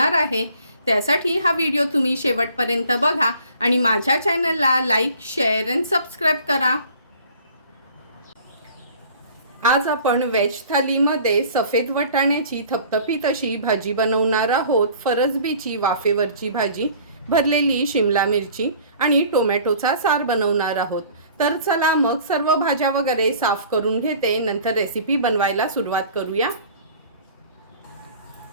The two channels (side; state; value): both; inverted; correlation -0.50